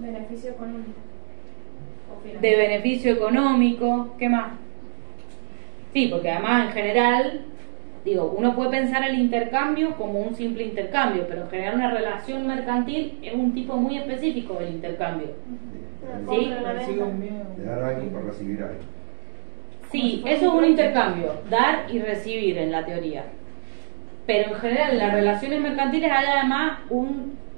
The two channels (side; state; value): left; silent; 62 dB below the other